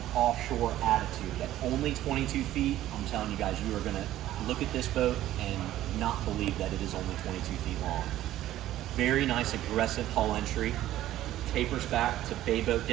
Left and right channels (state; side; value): quieter; left; 13.8 dB